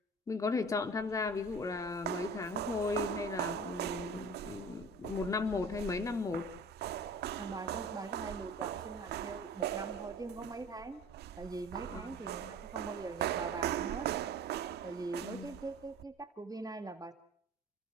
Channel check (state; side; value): normal; both; correlation 0.41